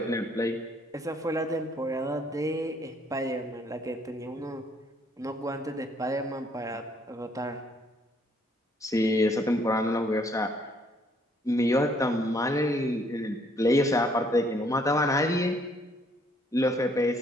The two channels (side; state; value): both; normal; correlation 0.65